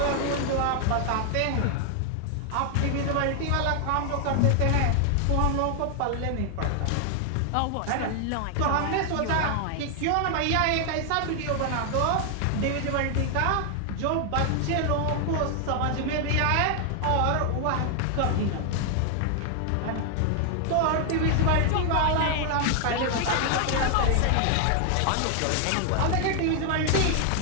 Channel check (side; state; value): both; different; correlation 0.00